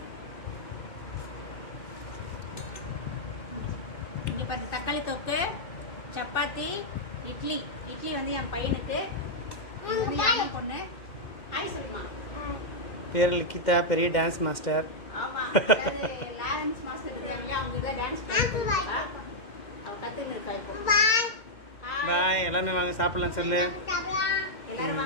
இங்க பாருங்க தக்காளி தொக்கு, சப்பாத்தி, இட்லி. இட்லி வந்து என் பையனுக்கு. இது என்ன பொண்ணு? ஹாய் சொல்லுமா. பேர் லிகிதா, பெரிய டான்ஸ் மாஸ்டர். ஆமா. டான்ஸ் மாஸ்டர் இருக்காங்க. அவங்க இத டான்ஸ் பண்ணுவாங்க. அவ கத்துக்கிட்டு இருக்கா இப்போ. பாய். எல்லாரும் வாங்க சாப்பிடலாம் சொல்லு. எல்லாரும்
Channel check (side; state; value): right; late; 2.0 ms